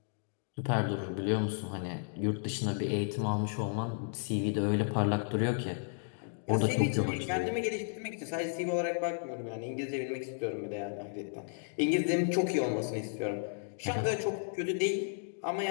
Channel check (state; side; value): silent; right; digital silence